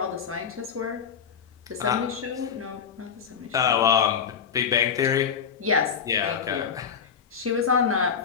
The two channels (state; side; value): quieter; right; 7.1 dB